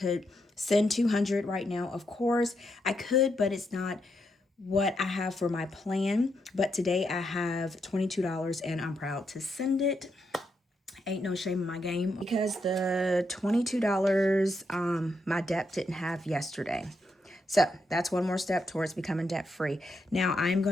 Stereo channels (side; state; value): both; normal; correlation 0.81